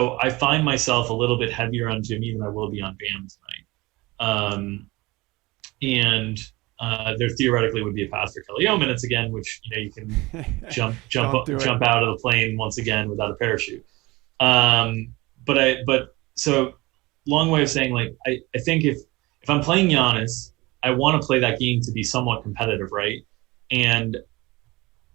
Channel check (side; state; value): left; quieter; 21.9 dB